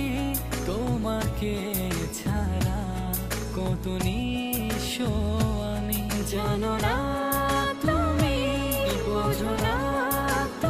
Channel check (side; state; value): both; identical; correlation 1.00